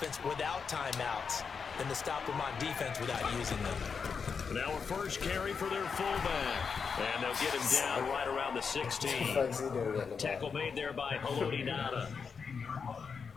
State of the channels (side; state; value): right; quieter; 5.8 dB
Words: without timeouts than to stop them on defense without using them. Now a first carry for their fullback. And they'll get him down right around the 16. Tackle made there by Haloti Ngata.